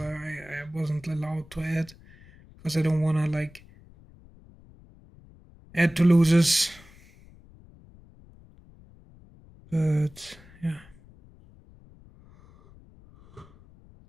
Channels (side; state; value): left; noise; rumble, 24 dB below the sound